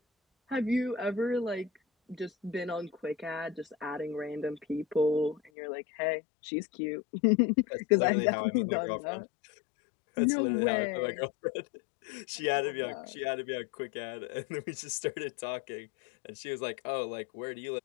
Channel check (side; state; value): right; drops out; at 5.5 s